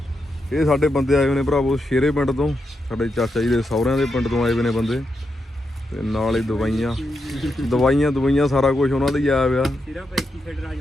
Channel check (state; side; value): normal; both; correlation 0.85